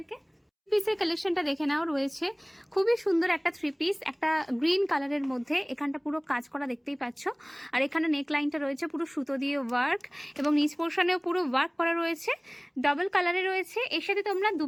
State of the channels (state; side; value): identical; both; correlation 1.00